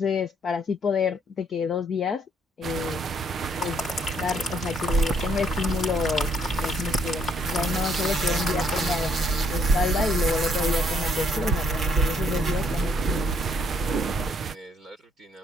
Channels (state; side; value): normal; both; correlation 0.68